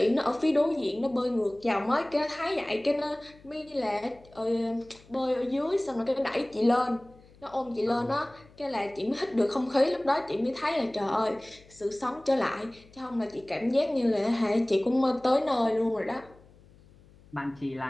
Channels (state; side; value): noise; left; hum, 26 dB below the sound